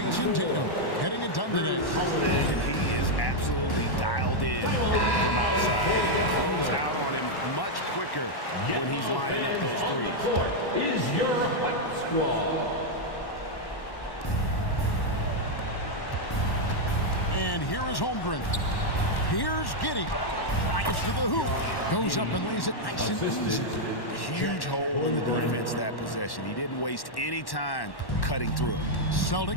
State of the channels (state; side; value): late; right; 1.1 ms